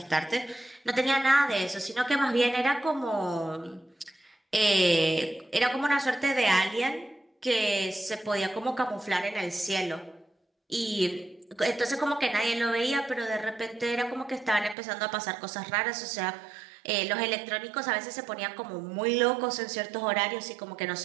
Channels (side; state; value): left; drops out; at 14.8 s